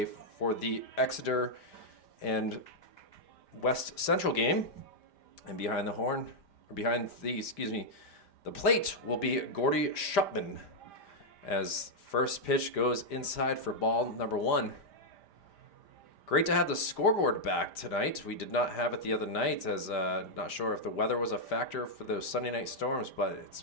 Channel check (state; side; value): late; right; 5.0 ms